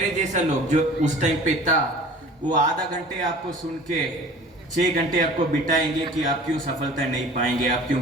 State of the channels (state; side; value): normal; both; correlation 0.45